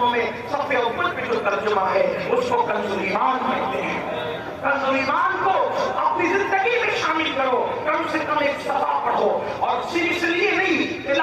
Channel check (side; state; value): both; identical; correlation 1.00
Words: میں صفحے اوپر پہ جو ترجمہ ہے اس کو کنز ایمان کہتے ہیں. کنز ایمان کو اپنی زندگی میں شامل کرو، کم سے کم ایک صفحہ پڑھو. اور صرف اس لیے نہیں،